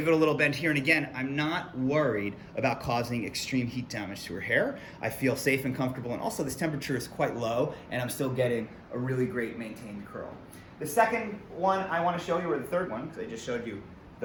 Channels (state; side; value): identical; both; correlation 1.00